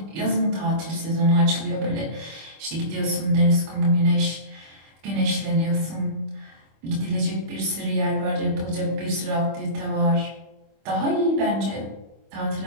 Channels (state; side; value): late; left; 25 ms